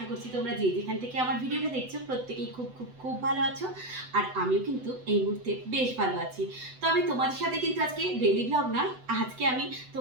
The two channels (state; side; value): late; left; 8.0 ms